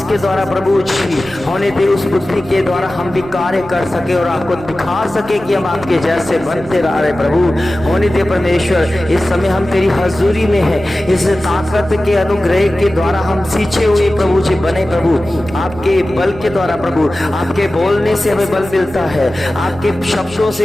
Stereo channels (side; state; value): right; noise; hum, 20 dB below the sound